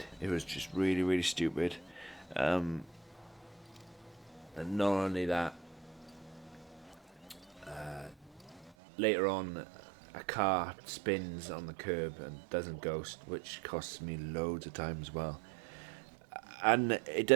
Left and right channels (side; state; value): left; drops out; at 8.7 s